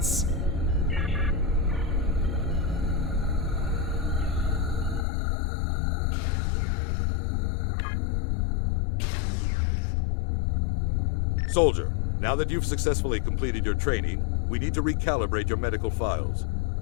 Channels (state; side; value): drops out; right; at 5.1 s